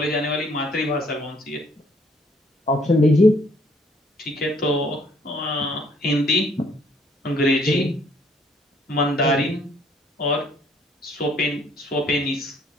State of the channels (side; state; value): both; normal; correlation 0.63